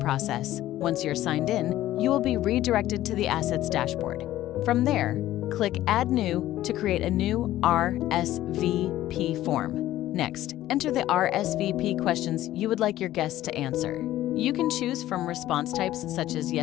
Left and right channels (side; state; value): right; quieter; 14.3 dB